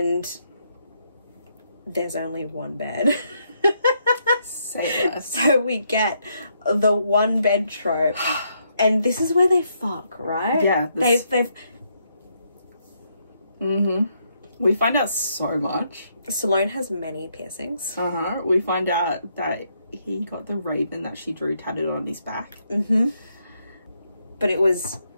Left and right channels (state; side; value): inverted; both; correlation -0.76